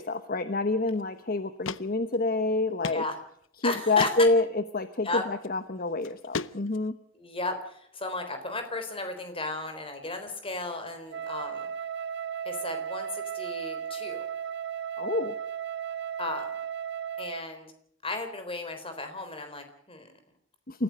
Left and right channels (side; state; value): both; normal; correlation -0.02